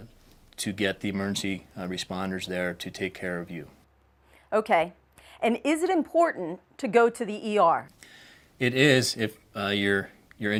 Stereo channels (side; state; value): both; identical; correlation 1.00